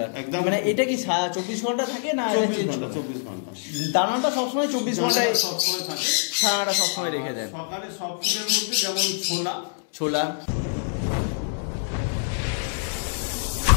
একদম, মানে এটা কি 24 ঘন্টা থাকে না? 24 ঘন্টা। দানাটা সবসময় 24 ঘন্টায় সবসময় থাকে, ছানাটা সবসময় রেখে দেন। সকালে সব কিছুর মধ্যে যেমন ছোলা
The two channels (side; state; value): right; silent; 62 dB below the other